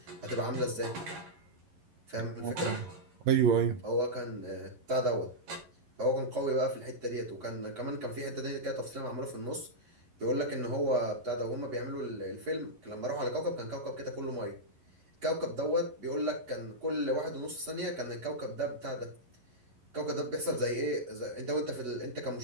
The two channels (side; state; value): left; late; 11 ms